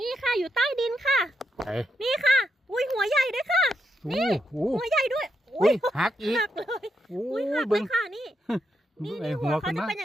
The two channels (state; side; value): normal; both; correlation 0.81